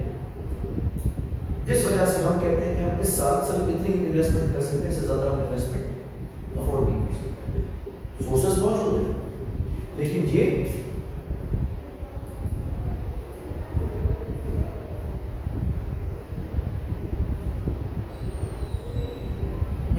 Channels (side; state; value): both; identical; correlation 1.00